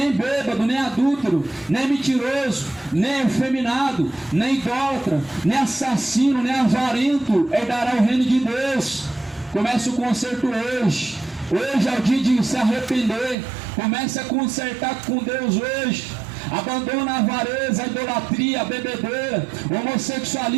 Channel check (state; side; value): drops out; left; at 13.4 s